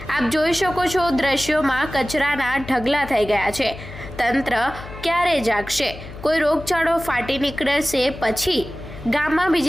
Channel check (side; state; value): left; noise; hum, 14 dB below the sound